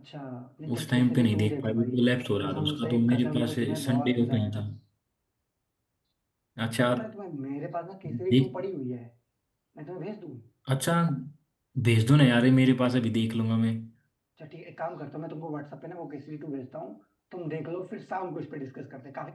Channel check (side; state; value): both; identical; correlation 1.00